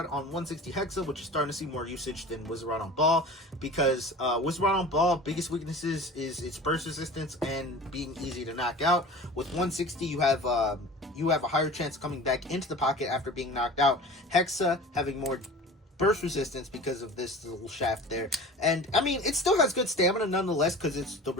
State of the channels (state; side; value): normal; both; correlation 0.39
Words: on 160 Hexa, which is starting to see more usage than Wizard Rod on Ball, because Wizard Rod on Ball, biggest weaknesses is its burst resistance and being easy to knock out. With 160, you have a higher chance of coming back into the pocket after being knocked out. Hexa having more burst resistance because of this little shaft there, and I mean, it still has good stamina nonetheless because it's the